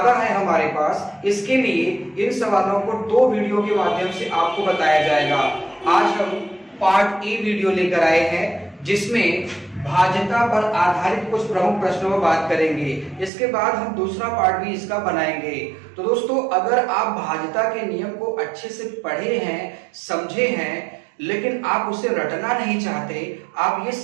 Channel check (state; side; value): drops out; left; at 13.3 s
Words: है हमारे पास। इसके लिए इन सवालों को 2 वीडियो के माध्यम से आपको बताया जाएगा। आज हम पार्ट ए वीडियो लेकर आए हैं जिसमें भाज्यता पर आधारित कुछ प्रमुख प्रश्नों पर बात करेंगे। इसके बाद हम दूसरा पार्ट भी इसका बनाएंगे। तो दोस्तों, अगर आप भाज्यता के नियम को अच्छे से पढ़े हैं, समझे हैं, लेकिन आप उसे रटना नहीं चाहते, आप ये